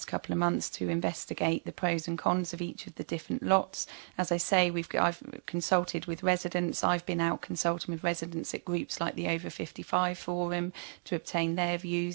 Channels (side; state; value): left; silent; digital silence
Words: couple of months to investigate the pros and cons of each of the different lots. As I say, I've consulted with residents. I've been out consulting with residents at groups like the Over 55 Forum to obtain their